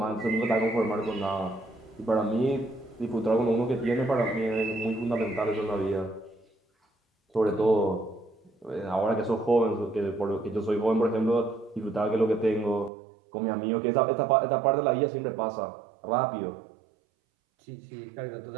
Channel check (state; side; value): drops out; left; at 12.9 s